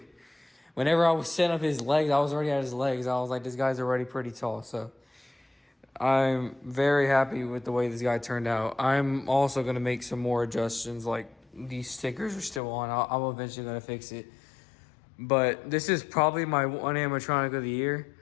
Whenever I was setting up his legs, I was already at his legs. I was like, this guy's already pretty tall. So I'm very happy with the way this guy turned out. I'm also going to make some more adjustments. Like these stickers are still on. I'm eventually going to fix it. But this is probably my one animatronic of the year.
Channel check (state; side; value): drops out; right; at 12.6 s